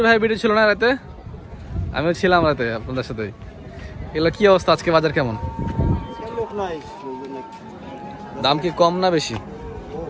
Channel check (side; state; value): both; identical; correlation 1.00